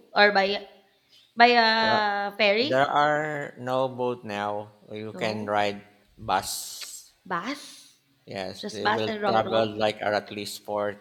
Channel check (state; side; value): identical; both; correlation 1.00